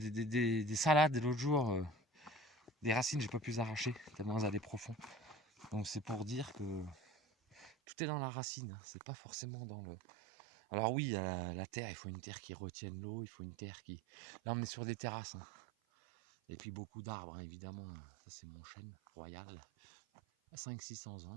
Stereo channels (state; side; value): drops out; left; at 7.8 s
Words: salades l'autre jour, des racines j'ai pas pu les arracher tellement elles allaient profond. Donc c'est pour dire que tout est dans la racine, c'est pas forcément dans le... Alors oui, la terre, il faut une terre qui retienne l'eau, il faut une terre qui... Là on est sur des terrasses, hein. Et puis beaucoup d'arbres, hein, évidemment. Ça c'est mon chêne royal, à 500-600